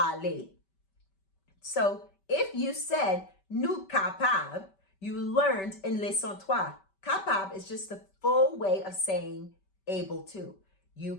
So if you said nous capables, you learned in leçon 3. Capable is just the full way of saying able to. You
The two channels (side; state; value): right; late; 5.2 ms